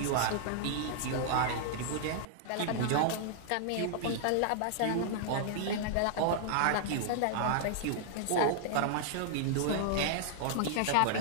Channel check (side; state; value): both; different; correlation -0.01